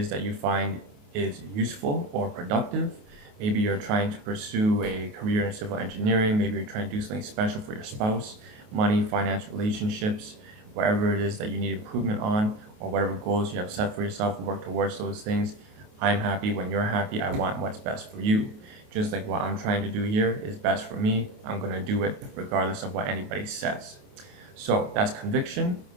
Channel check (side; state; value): left; late; 28 ms